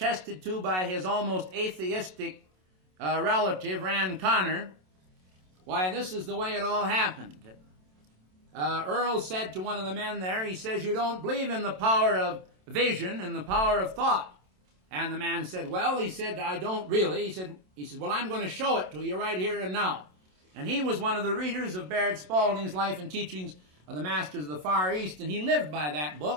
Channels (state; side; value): late; left; 27 ms